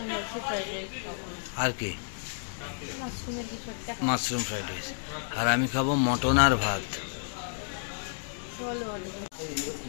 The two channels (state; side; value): silent; right; digital silence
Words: ভাবছি ফ্রাইড রাইস খাবো। আর কি? মাশরুমের কিছু একটা, মাশরুম ফ্রাইড রাইস। আর আমি খাবো মটন আর ভাত। চলো